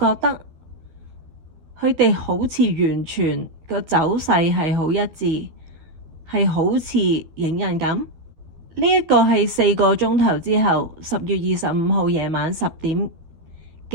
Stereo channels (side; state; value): left; late; 12 ms